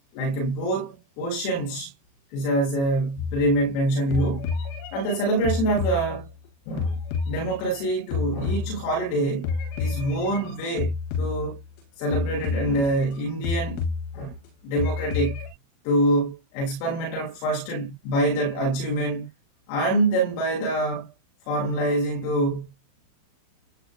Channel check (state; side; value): late; right; 36 ms